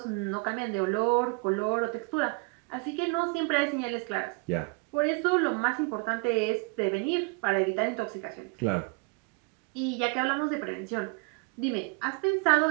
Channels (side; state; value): left; quieter; 32.0 dB